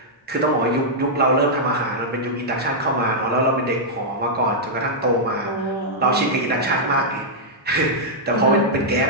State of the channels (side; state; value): both; normal; correlation -0.07